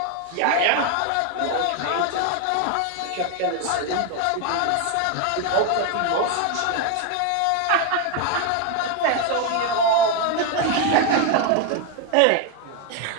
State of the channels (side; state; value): both; different; correlation 0.01